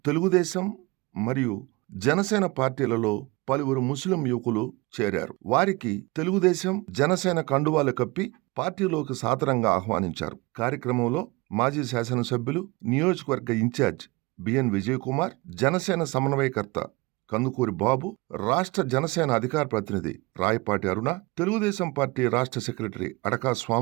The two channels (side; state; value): left; quieter; 24.2 dB